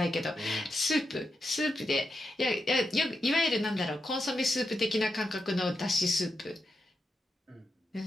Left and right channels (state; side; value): normal; both; correlation 0.86